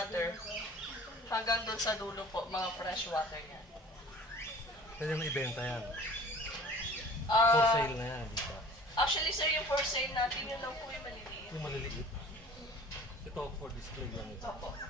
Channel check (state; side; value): normal; both; correlation 0.46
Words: Hanggang doon sa dulo po, mga freshwater yan. Pwede mo ibenta yan. For Ah, sale na yan, di ba? actually, sir, yung for sale natin, yun lang po yung maliliit. Yung maliliit. Ito, for display lang ito. Opo.